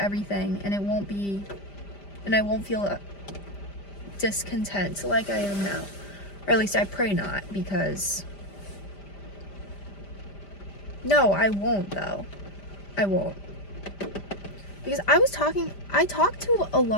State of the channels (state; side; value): late; right; 5.0 ms